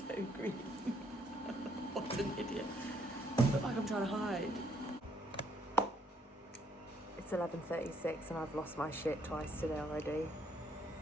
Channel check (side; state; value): both; normal; correlation 0.70